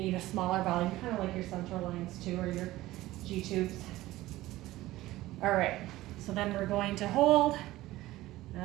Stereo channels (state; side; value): quieter; left; 16.9 dB